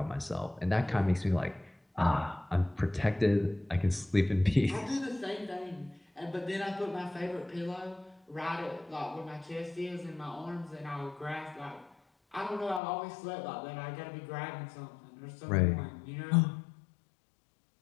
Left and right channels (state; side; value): drops out; right; at 12.8 s